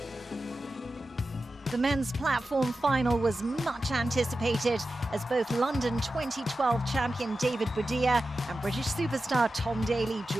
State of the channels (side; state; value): both; normal; correlation 0.93